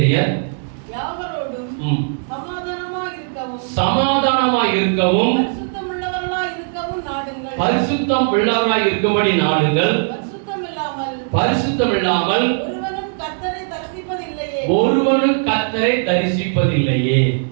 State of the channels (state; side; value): silent; left; digital silence